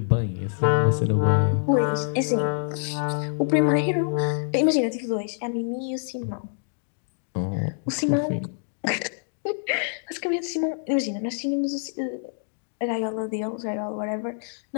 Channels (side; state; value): right; silent; digital silence